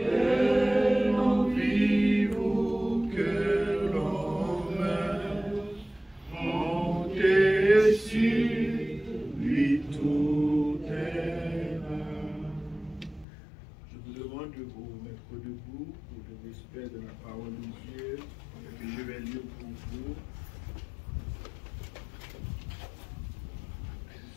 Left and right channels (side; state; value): right; drops out; at 13.2 s